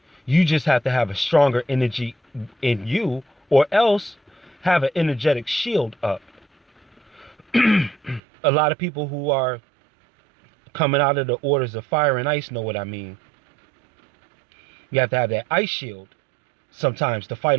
You just have to have a stronger energy in you, or else have an energetic shield up. A lot of people who are coming out of the orders of fire and ice know what I mean. You have to have that ice shield sometimes to fight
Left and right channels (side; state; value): left; drops out; at 8.2 s